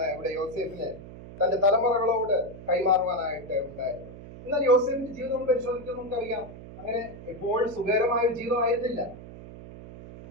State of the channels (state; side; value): noise; right; hum, 15 dB below the sound